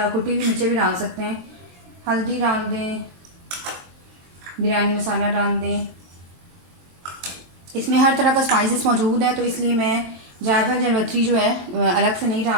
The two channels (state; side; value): late; left; 23 ms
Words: कुटी हुई मिर्चें भी डाल सकते हैं। हल्दी डाल दें, बिरयानी मसाला डाल दें। इसमें हर तरह का स्पाइसेस मौजूद है, तो इसलिए मैं जायफल जलवत्री जो है अलग से नहीं